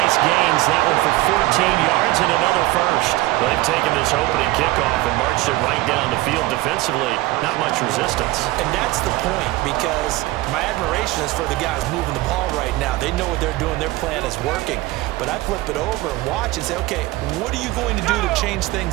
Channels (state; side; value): quieter; left; 18.7 dB